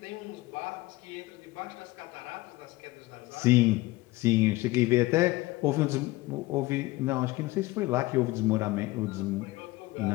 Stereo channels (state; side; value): quieter; right; 19.8 dB